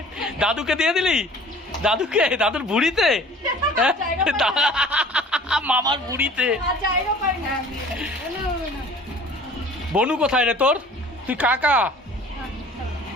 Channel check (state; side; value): normal; both; correlation 0.48